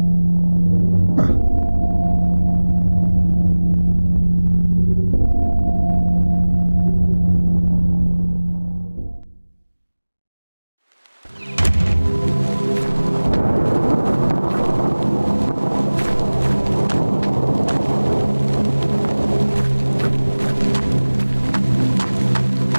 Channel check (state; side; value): inverted; both; correlation -1.00